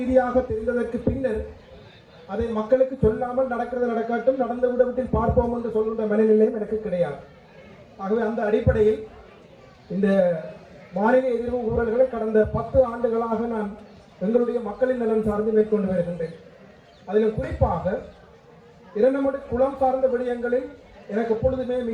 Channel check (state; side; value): identical; both; correlation 1.00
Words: தெரிந்ததற்கு பின்னர் அதை மக்களுக்கு சொல்லாமல் நடக்கிறது நடக்கட்டும், நடந்த விடத்தில் பார்ப்போம் என்று சொல்கின்ற மனநிலையும் எனக்கு கிடையாது. ஆகவே அந்த அடிப்படையில் இந்த வானிலை எதிர்ப்பு ஊழல்களை கடந்த 10 ஆண்டுகளாக நான் எங்களுடைய மக்களின் நலன் சார்ந்து மேற்கொண்டு வருகின்றேன். அதில் குறிப்பாக இரண்டமடு குளம் சார்ந்த விடயங்களில் எனக்கு எப்பொழுதுமே